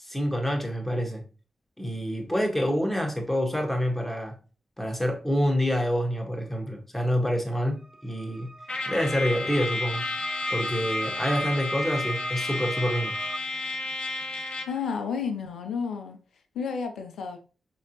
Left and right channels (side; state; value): both; normal; correlation 0.89